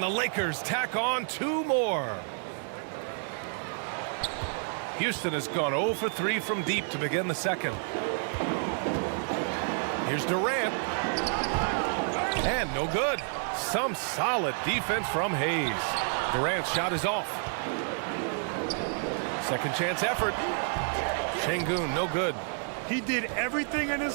the Lakers tack on 2 more. Houston has gone 0 for 3 from deep to begin the second. Here's Durant. And no good. Some solid defense from Hayes. Durant's shot is off. Second chance effort. Şengün, no good. He did everything in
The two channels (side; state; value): left; silent; 58 dB below the other